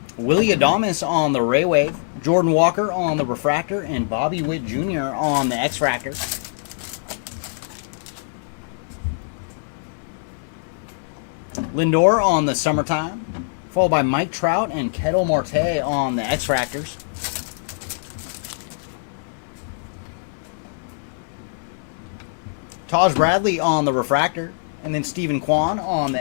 Willie Adames on the Ray Wave, Jordan Walker on the Refractor, and Bobby Witt Jr. on the X-Fractor. Lindor on the Summertime, followed by Mike Trout and Ketel Marte on the X-Fractors. Taj Bradley on the Refractor, and then Stephen Kwan on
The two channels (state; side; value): silent; right; 64 dB below the other